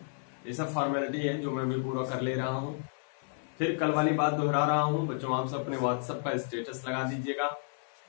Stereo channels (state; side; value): silent; right; 57 dB below the other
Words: ये सब फॉर्मेलिटी है जो मैं भी पूरा कर ले रहा हूँ। फिर कल वाली बात दोहरा रहा हूँ बच्चों, आप सब अपने व्हाट्सएप का स्टेटस लगा दीजिएगा।